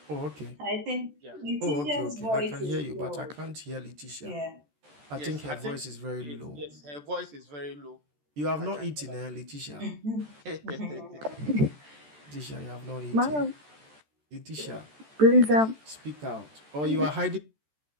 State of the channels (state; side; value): late; left; 14 ms